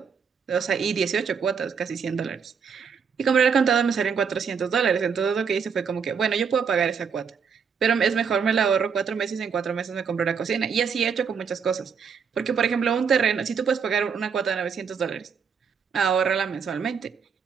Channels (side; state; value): left; quieter; 6.3 dB